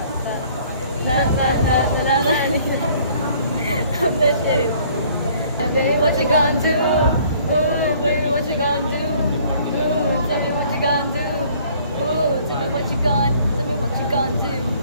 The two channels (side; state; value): both; inverted; correlation -0.57